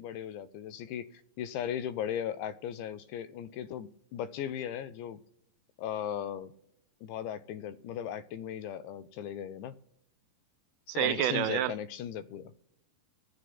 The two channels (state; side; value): late; right; 16 ms